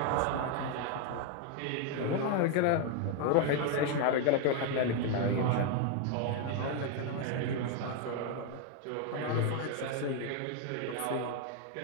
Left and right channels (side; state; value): both; different; correlation 0.01